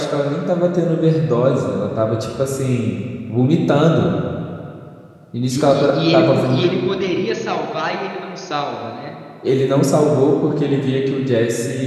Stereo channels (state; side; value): identical; both; correlation 1.00